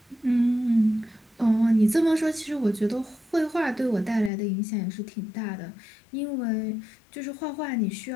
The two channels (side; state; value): right; drops out; at 4.3 s